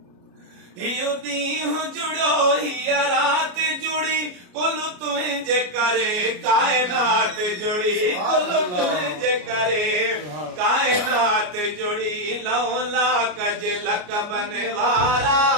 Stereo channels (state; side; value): late; left; 33 ms